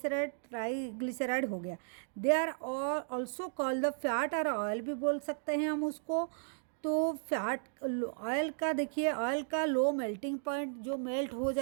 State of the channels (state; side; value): silent; left; digital silence